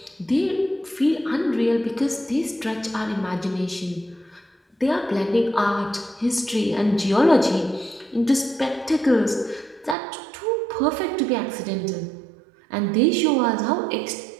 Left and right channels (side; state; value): left; drops out; at 10.0 s